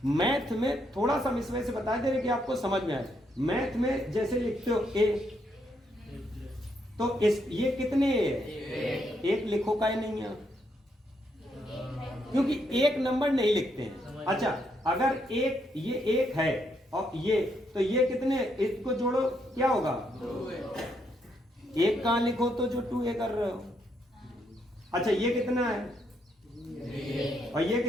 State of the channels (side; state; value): both; normal; correlation 0.76